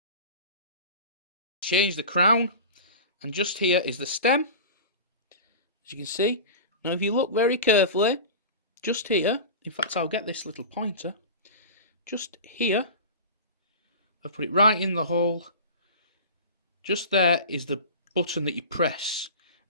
Change the crown, and just here is the stem, as you can see. Now if you look very carefully, just here, in fact I'll get this little pointer, just here, I've put it right in the hole. Just there is the button that you press.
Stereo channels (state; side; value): inverted; both; correlation -0.32